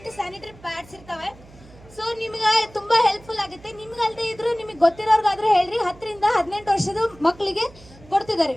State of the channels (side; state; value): right; noise; hum, 23 dB below the sound